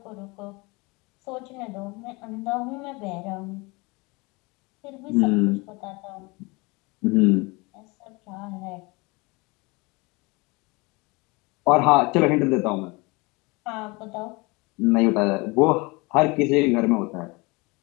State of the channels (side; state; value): right; quieter; 26.1 dB